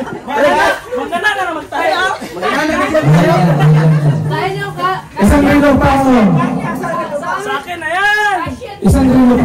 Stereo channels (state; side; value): identical; both; correlation 1.00